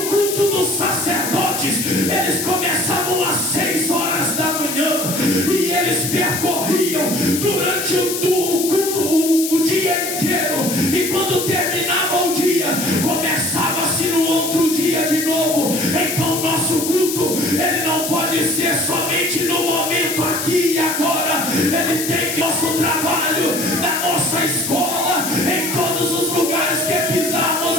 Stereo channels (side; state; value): left; noise; hiss, 4 dB below the sound